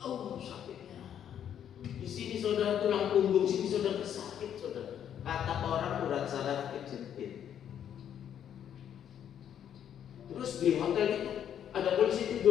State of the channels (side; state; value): right; quieter; 9.5 dB